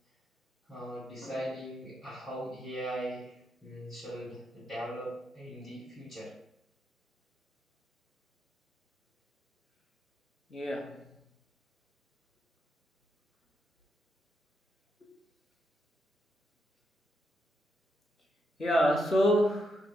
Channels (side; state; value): both; normal; correlation 0.81